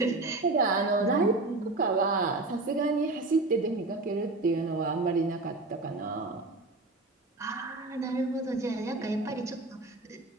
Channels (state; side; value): quieter; left; 3.1 dB